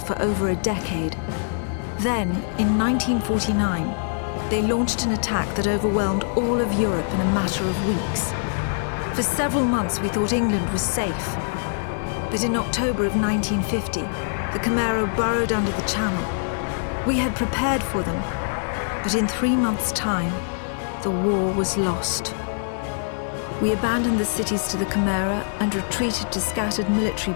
over a decade. Then, in 1949, they launched an attack that overwhelmed all of Europe in a matter of weeks. For several months, we thought England was safe. But in October of 1950, the Chimera burrowed under the Channel. We had prepared for them, but in 3 months' time, the war was lost. We abandoned the cities to the Chimera and retreated to scattered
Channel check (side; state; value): right; silent; digital silence